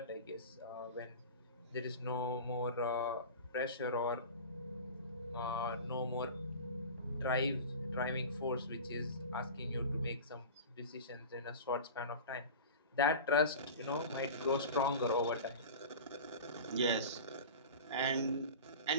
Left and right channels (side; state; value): both; inverted; correlation -0.34